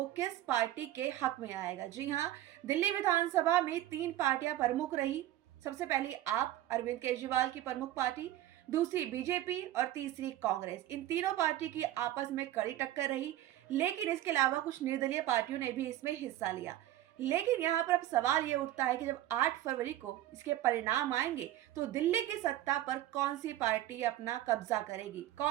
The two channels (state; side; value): quieter; left; 13.9 dB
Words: किस पार्टी के हक में आएगा। जी हाँ, दिल्ली विधानसभा में 3 पार्टियां प्रमुख रही। सबसे पहली आप अरविंद केजरीवाल की प्रमुख पार्टी, दूसरी बीजेपी और तीसरी कांग्रेस। इन तीनों पार्टी की आपस में कड़ी टक्कर रही, लेकिन इसके अलावा कुछ निर्दलीय पार्टियों ने भी इसमें हिस्सा लिया। लेकिन यहाँ पर अब सवाल ये उठता है कि जब 8 फरवरी को इसके परिणाम आएंगे तो दिल्ली की सत्ता पर कौन सी पार्टी अपना कब्जा करेगी,